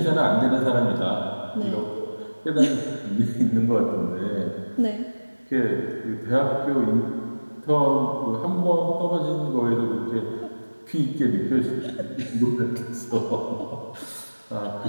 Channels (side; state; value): both; inverted; correlation -1.00